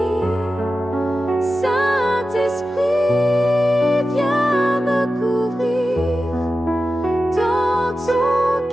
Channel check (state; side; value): normal; both; correlation 0.93